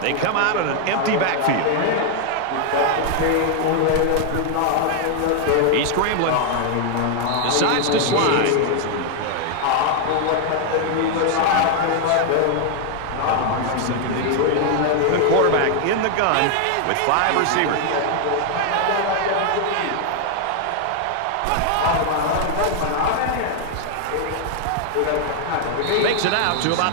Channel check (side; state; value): both; different; correlation 0.00